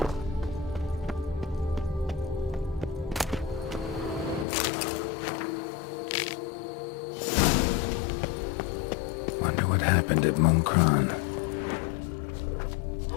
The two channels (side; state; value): right; drops out; at 4.5 s